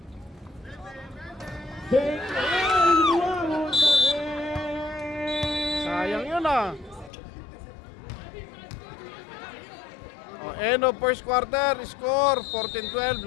10. Sayang yun ah. End of first quarter, score 14-12.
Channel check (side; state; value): right; drops out; at 7.1 s